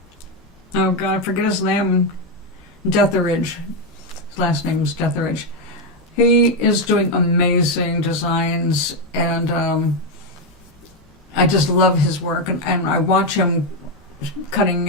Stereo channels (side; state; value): both; normal; correlation 0.05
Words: Oh God, I forget his name. Detheridge. His last name is Detheridge. He is doing amazing designs, and I just love his work. And I watch him cutting